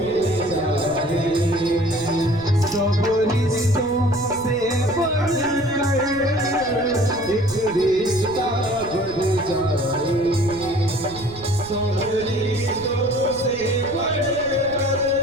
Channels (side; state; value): right; noise; rumble, 17 dB below the sound